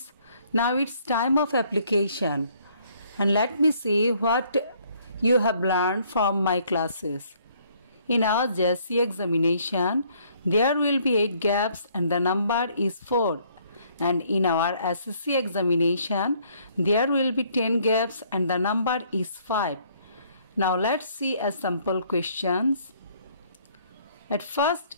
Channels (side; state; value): both; inverted; correlation -0.64